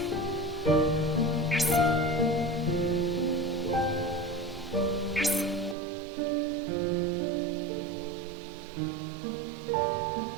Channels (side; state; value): left; drops out; at 5.8 s